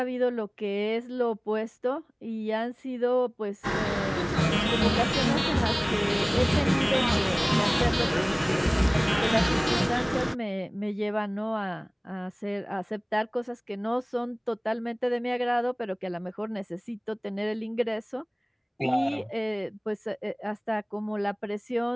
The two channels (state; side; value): identical; both; correlation 1.00